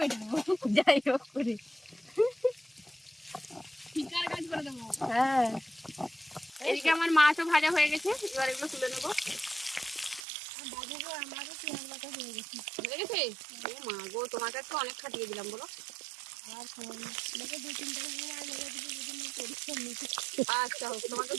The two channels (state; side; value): drops out; left; at 10.2 s